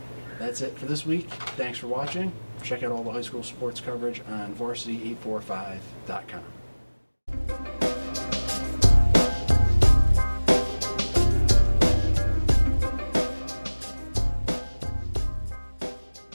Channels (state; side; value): inverted; both; correlation -1.00